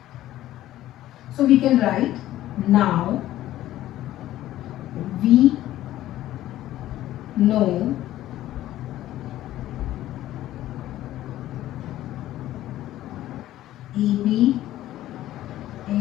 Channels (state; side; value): quieter; right; 14.1 dB